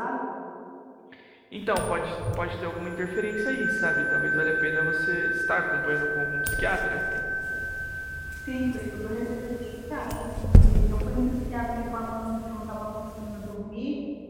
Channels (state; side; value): identical; both; correlation 1.00